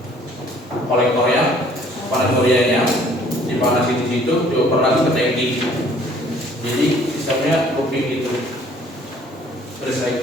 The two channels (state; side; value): normal; both; correlation 0.57